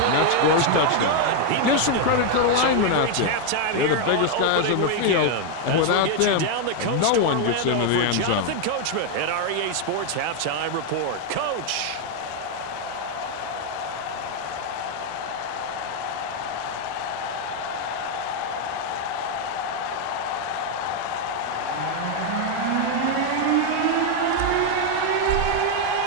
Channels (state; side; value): different; both; correlation 0.01